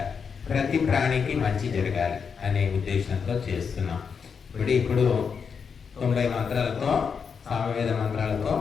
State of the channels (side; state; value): right; quieter; 6.2 dB